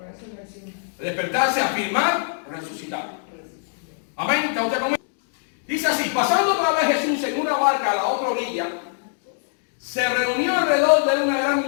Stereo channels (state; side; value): silent; right; digital silence